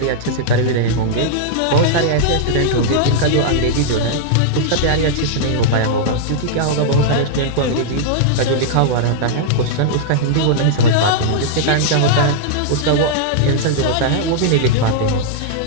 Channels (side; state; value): both; different; correlation -0.02